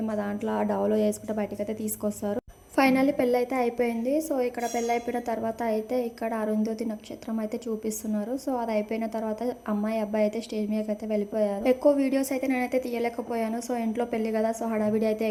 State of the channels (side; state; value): both; identical; correlation 1.00